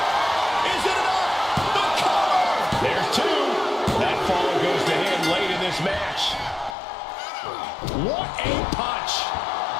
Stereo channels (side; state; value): right; drops out; at 6.8 s